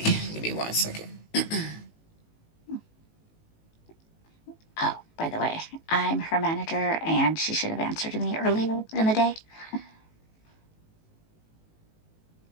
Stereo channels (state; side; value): late; right; 19 ms